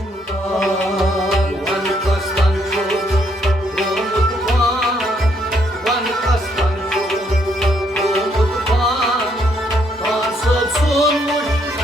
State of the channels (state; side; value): normal; both; correlation 0.72